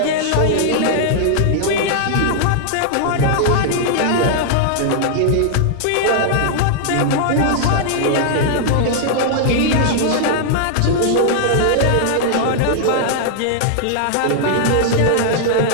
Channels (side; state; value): both; different; correlation -0.01